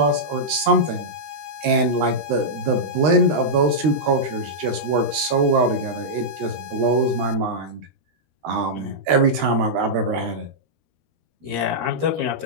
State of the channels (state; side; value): late; left; 13 ms